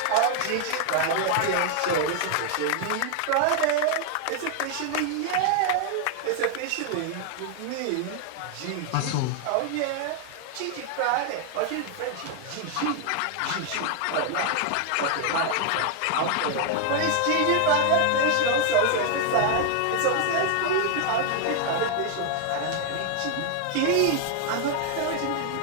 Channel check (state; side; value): different; both; correlation 0.00